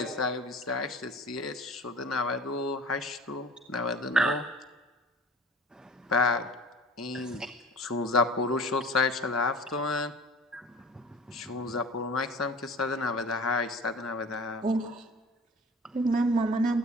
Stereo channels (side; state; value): both; normal; correlation 0.42